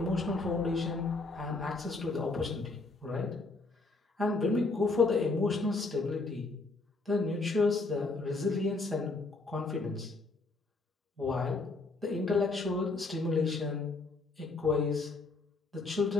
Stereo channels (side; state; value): right; quieter; 3.5 dB